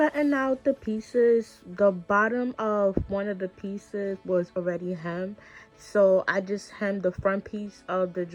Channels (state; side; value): identical; both; correlation 1.00